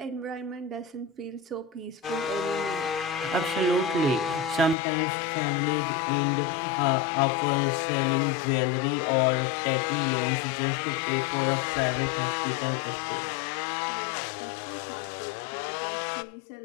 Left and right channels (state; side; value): drops out; right; at 4.8 s